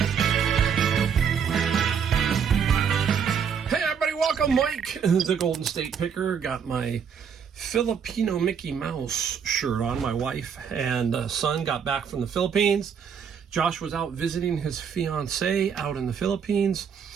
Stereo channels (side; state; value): left; quieter; 7.1 dB